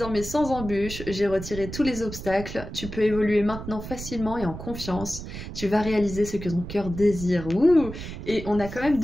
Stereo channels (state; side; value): noise; right; rumble, 9 dB below the sound